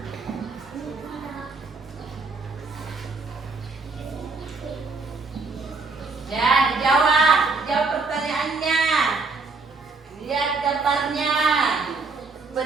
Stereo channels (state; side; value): quieter; left; 4.0 dB